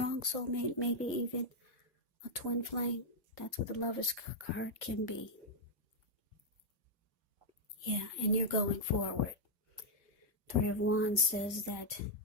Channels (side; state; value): both; normal; correlation -0.04